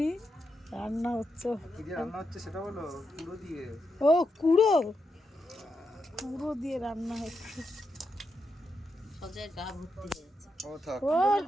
রান্না হচ্ছে। সেটা বলো। কুড়ো দিয়ে। ও কুড়ো, কুড়ো দিয়ে রান্না হচ্ছে। সজের গা ভর্তি হয়েছে।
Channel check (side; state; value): both; normal; correlation 0.84